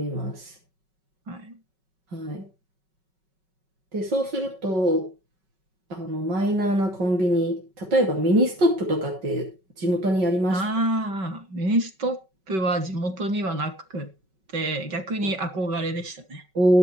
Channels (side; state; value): left; late; 5.3 ms